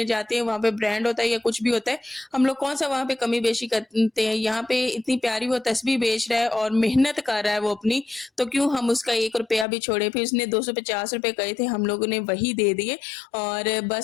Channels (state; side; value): drops out; right; at 9.7 s